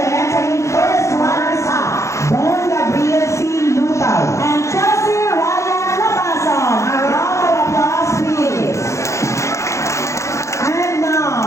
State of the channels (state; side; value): late; right; 0.14 ms